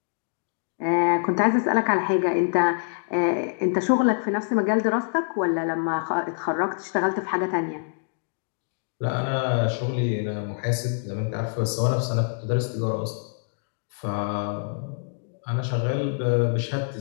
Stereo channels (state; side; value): silent; right; digital silence